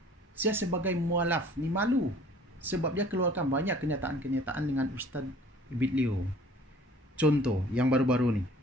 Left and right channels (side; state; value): both; normal; correlation 0.51